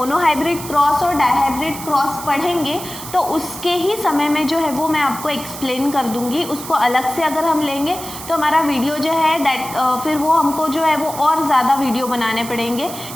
हाइब्रिड क्रॉस और डाई हाइब्रिड क्रॉस पढ़ेंगे तो उसके ही समय में जो है वो मैं आपको एक्सप्लेन कर दूंगी। उसको अलग से अगर हम लेंगे तो हमारा वीडियो जो है दैट फिर वो हमको जो है वो और ज़्यादा वीडियो बनाने पड़ेंगे।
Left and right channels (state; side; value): noise; right; hiss, 11 dB below the sound